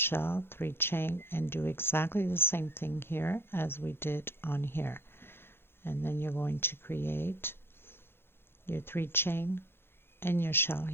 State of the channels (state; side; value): late; right; 0.11 ms